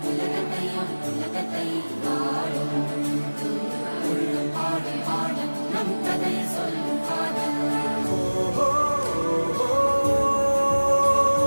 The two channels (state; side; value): inverted; both; correlation -1.00